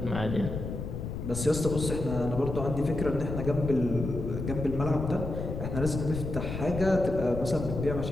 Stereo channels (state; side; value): noise; left; rumble, 5 dB below the sound